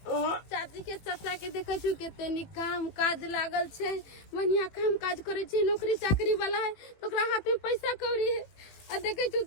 चाची के चाचा के देखे छु केतनी काम काज लागल छे बढ़िया काम काज करे छे नौकरी चाकरी वाला है तो ओकरा हाथ में पैसा कौड़ी है आ देखे छु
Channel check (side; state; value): right; late; 18 ms